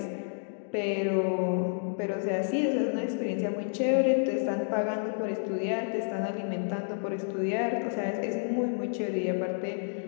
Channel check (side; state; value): right; silent; digital silence